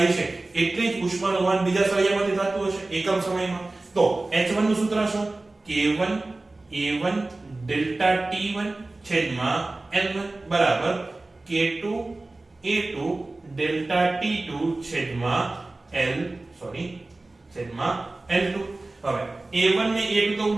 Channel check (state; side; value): quieter; left; 3.0 dB